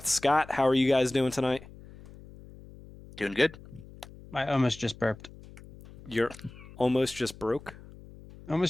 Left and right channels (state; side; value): noise; left; hum, 19 dB below the sound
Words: Scott. How are you guys doing tonight? Doing good. I almost just burped. You're almost just broke?